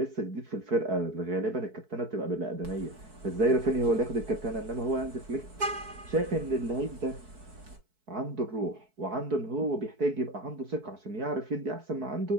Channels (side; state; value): left; late; 4.6 ms